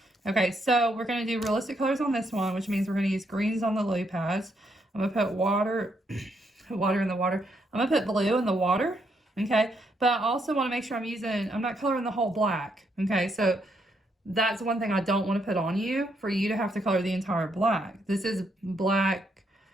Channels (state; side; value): normal; both; correlation 0.76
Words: Okay, so we're going to do realistic colors on this one, which means we're going to use greens on the lily pads. I'm going to put water in the water. I'm going to put blue in the water, okay? But I also want to make sure I'm not coloring the whole black, okay? So that's one thing I don't want to put on you, for you to have to color the entire black. This is black,